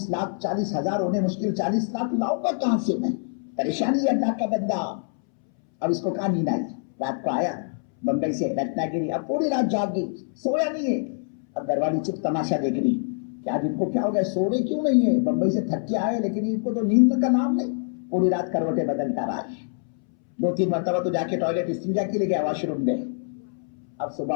لاکھ 40,000 ہونے مشکل، 40 لاکھ لاؤں گا کہاں سے میں؟ پریشانی ہے اللہ کا بندہ۔ اب اس کو کہاں نیند آئی، رات کو آیا بمبئی سے رتنا گیری، اب پوری رات جاگ گئی، سویا نہیں ہے۔ اب گھر والی چپ تماشا دیکھ رہی کہ آج ان کو کیا ہو گیا، سو رہے کیوں نہیں ہے، بمبئی سے تھک کے آئے لیکن ان کو تو نیند کا نام نہیں، پوری رات کروٹیں بدلتا رہا ہے، 2-3 مرتبہ تو جا کے ٹوائلٹ استنجا کے لیے گیا، واش روم میں۔ اب صبح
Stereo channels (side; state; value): right; silent; 62 dB below the other